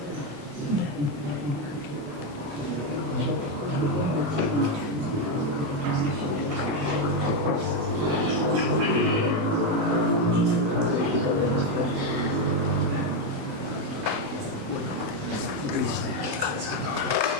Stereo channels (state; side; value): late; left; 28 ms